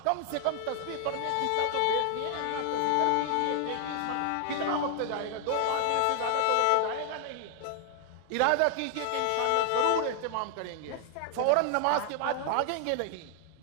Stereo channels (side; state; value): both; different; correlation 0.00